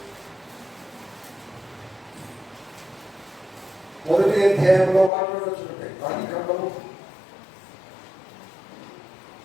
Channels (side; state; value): right; drops out; at 5.1 s